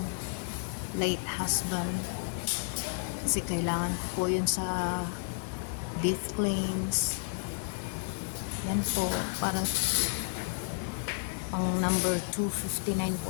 late husband. Kasi kailangan ko po yun sa death claims. Yan po, para ang number 259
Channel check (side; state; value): right; silent; 57 dB below the other